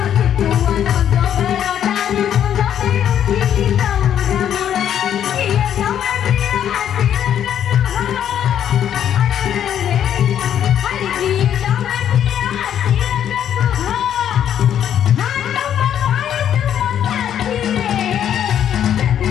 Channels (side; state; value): right; quieter; 9.8 dB